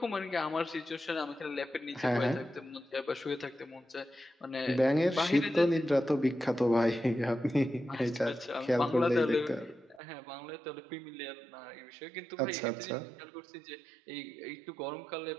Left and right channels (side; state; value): left; drops out; at 10.0 s